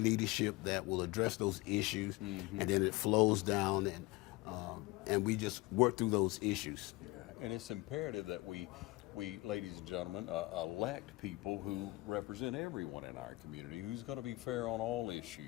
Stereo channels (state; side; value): quieter; right; 21.7 dB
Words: that will address those issues, and then it flows down, and we just work through those issues. And it's imperative that we, ladies and gentlemen, elect people who represent everyone in our community, who's going to be fair on all